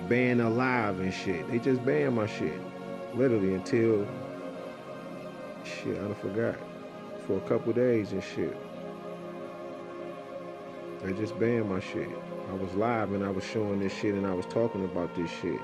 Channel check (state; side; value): identical; both; correlation 1.00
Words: alive and shit. They just ban my shit. Literally until, shit, I done forgot. For a couple days and shit. They just banned my shit. I was live and I was showing this shit and I was talking about this shit.